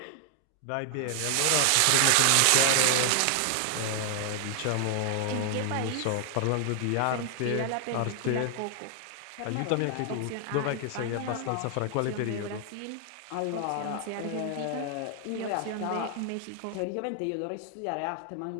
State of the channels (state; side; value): different; both; correlation 0.00